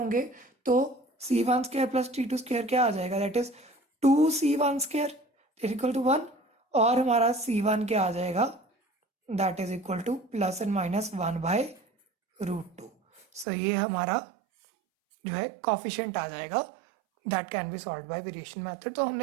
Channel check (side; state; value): left; drops out; at 13.5 s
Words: तो c1 square plus c2 square क्या आ जाएगा, that is 2c1 square equal to 1, और हमारा c1 क्या आ जाएगा, that is equal to plus and minus 1/√2। So ये हमारा जो है कॉफिशिएंट आ जाएगा, that can be solve by variation method. तो